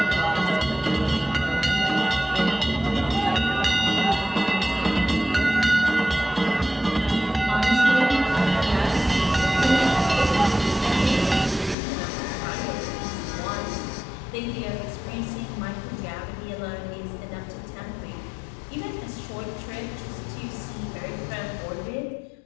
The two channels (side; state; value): right; drops out; at 11.8 s